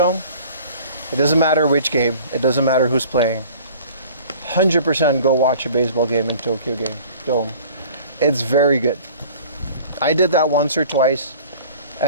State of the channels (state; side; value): inverted; both; correlation -0.47